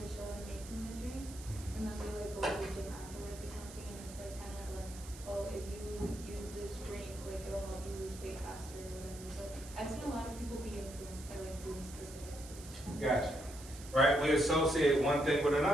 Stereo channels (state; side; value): noise; right; hiss, 16 dB below the sound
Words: they show them making the drink, and then they like go to the gym afterwards or something, and it's like kind of like, oh, if you use this drink, like it'll help you lose weight faster or whatever. So I've seen a lot of people be influenced by like Bloom specifically. Gotcha. Right, we associate one thing with